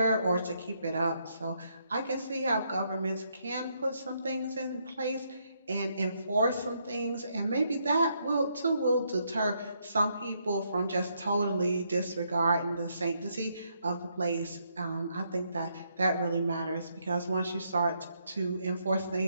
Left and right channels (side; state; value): both; inverted; correlation -0.75